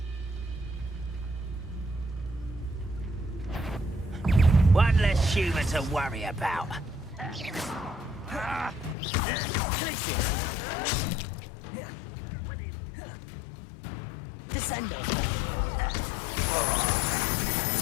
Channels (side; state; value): right; drops out; at 9.0 s